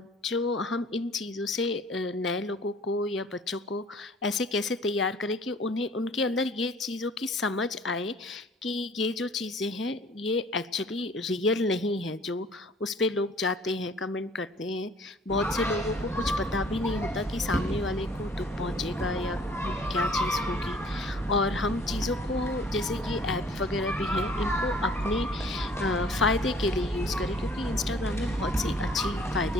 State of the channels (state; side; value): normal; both; correlation 0.54